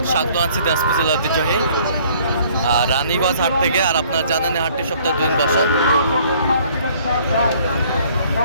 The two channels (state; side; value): inverted; both; correlation -0.58